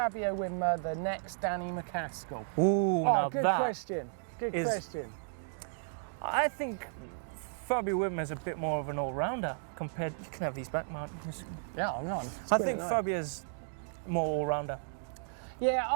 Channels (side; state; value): left; silent; digital silence